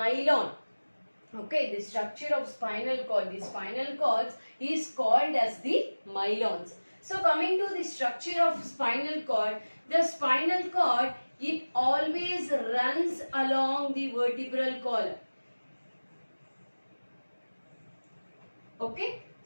Okay, the structure of spinal cord, the spinal cord is called as the myelins. So coming to the structure of spinal cord, the spinal cord, it always runs along the vertebral column. Okay,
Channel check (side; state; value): both; inverted; correlation -1.00